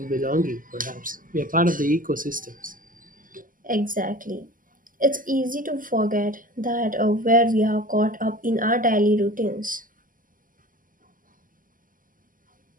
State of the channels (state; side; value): late; left; 0.40 ms